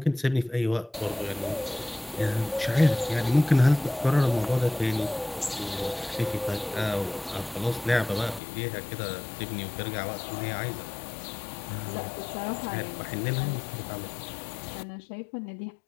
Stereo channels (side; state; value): right; drops out; at 8.4 s